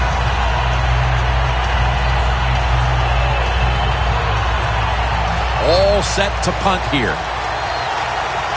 All set to punt here.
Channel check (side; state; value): both; identical; correlation 1.00